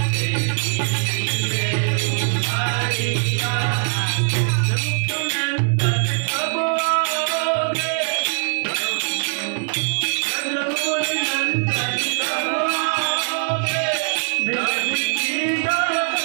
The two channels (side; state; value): left; silent; digital silence